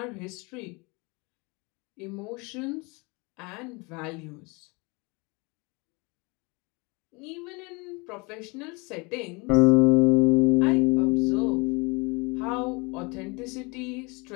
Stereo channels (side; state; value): right; quieter; 27.8 dB